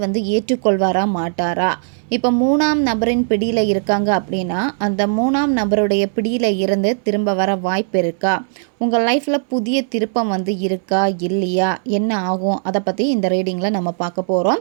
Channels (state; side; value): silent; left; 67 dB below the other